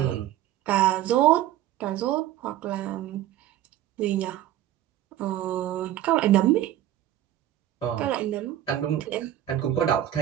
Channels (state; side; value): quieter; left; 12.7 dB